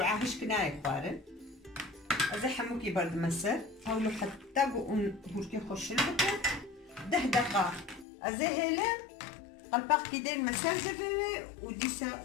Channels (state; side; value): drops out; right; at 8.1 s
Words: هش كناي خوارن ازي حموكي برد مسر حاولوا حتى قون هوركي خوش لبكو 10 دقائق ازي هيلا قلباق كيدين مسار زفوي